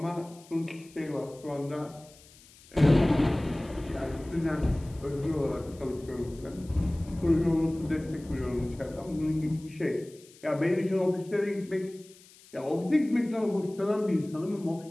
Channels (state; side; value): noise; left; hiss, 24 dB below the sound